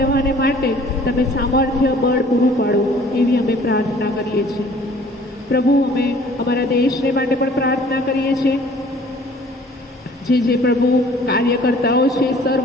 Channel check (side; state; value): both; normal; correlation 0.53